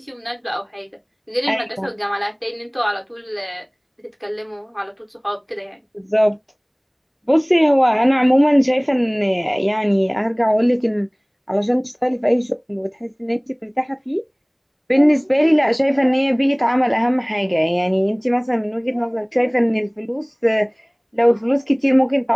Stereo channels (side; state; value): both; identical; correlation 1.00